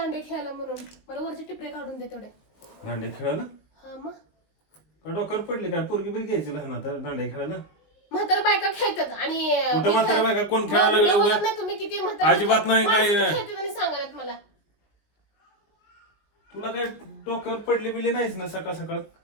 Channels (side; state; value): right; late; 20 ms